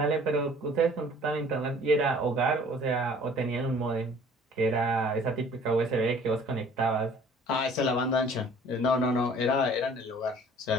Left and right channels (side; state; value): both; normal; correlation 0.52